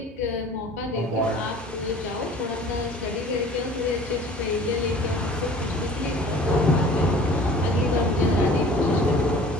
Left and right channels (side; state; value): both; normal; correlation 0.47